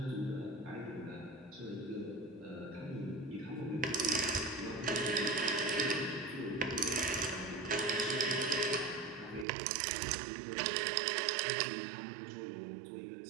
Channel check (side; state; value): left; drops out; at 9.5 s